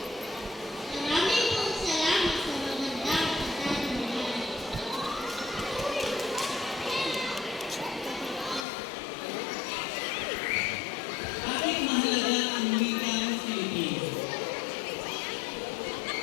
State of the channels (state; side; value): drops out; right; at 8.7 s